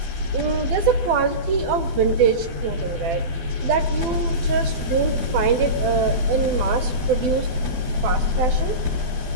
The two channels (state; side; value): late; left; 12 ms